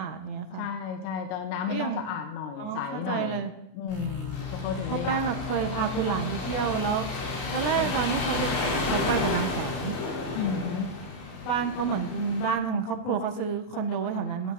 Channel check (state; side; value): late; right; 33 ms